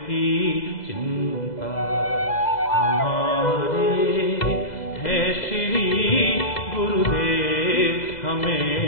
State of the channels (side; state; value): right; late; 2.0 ms